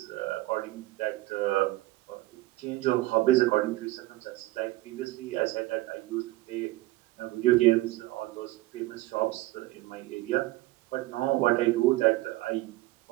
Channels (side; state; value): left; quieter; 18.4 dB